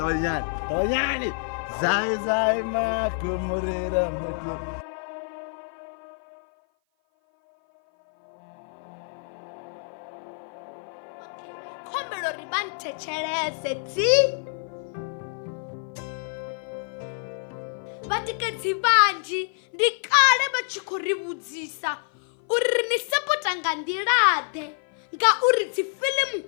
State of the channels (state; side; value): silent; right; 56 dB below the other